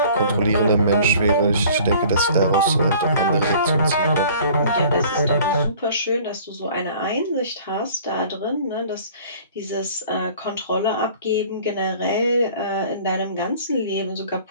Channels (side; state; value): both; inverted; correlation -0.50